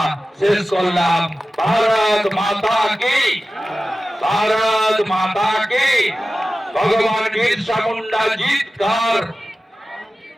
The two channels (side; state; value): both; normal; correlation 0.95